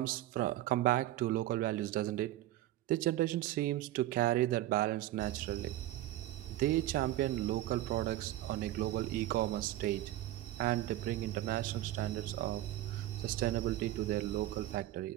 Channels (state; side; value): quieter; left; 14.6 dB